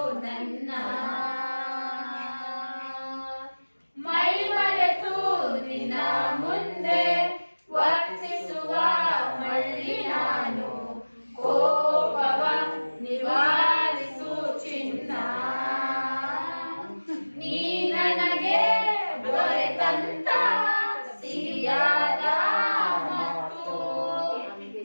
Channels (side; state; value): both; inverted; correlation -1.00